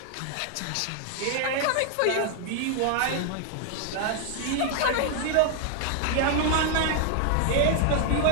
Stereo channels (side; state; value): both; different; correlation 0.00